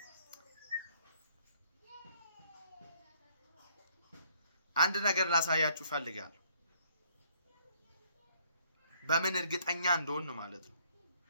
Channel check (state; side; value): inverted; both; correlation -0.65